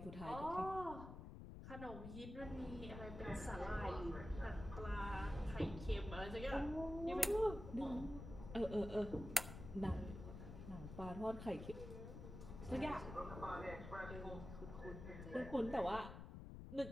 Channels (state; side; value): noise; left; rumble, 9 dB below the sound